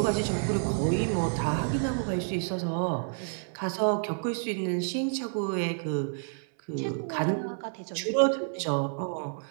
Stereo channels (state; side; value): silent; left; 58 dB below the other